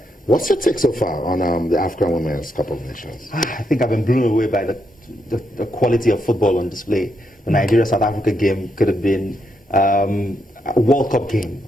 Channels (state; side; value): normal; both; correlation 0.80